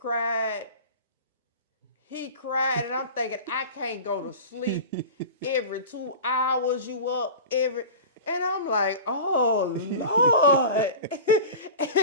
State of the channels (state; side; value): inverted; both; correlation -0.34